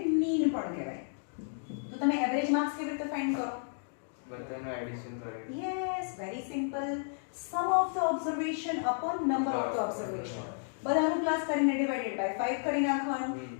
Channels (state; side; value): silent; right; digital silence